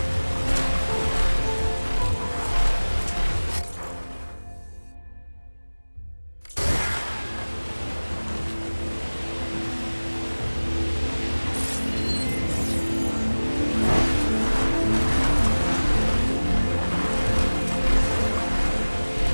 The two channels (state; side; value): inverted; both; correlation -1.00